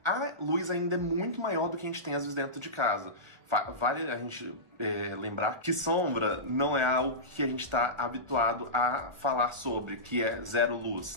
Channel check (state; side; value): late; left; 1.2 ms